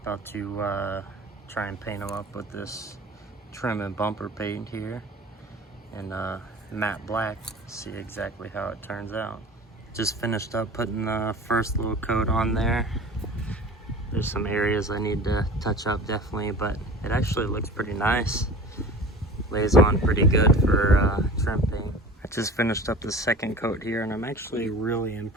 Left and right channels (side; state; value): both; normal; correlation 0.39